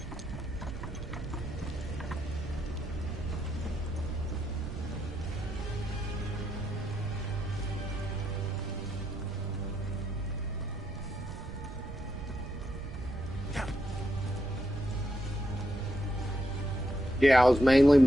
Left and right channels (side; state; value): right; noise; rumble, 9 dB below the sound